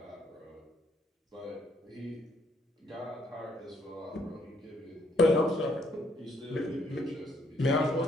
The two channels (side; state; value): both; normal; correlation 0.69